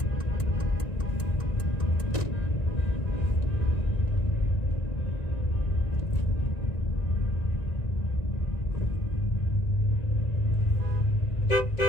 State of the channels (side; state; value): right; late; 1.9 ms